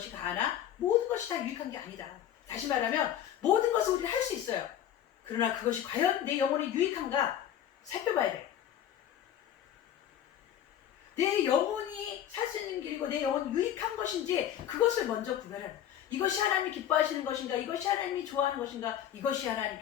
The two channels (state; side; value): quieter; right; 10.6 dB